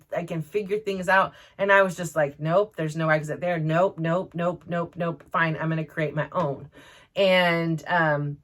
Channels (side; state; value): both; identical; correlation 1.00